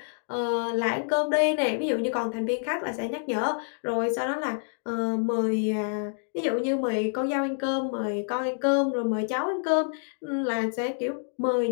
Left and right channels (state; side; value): silent; right; digital silence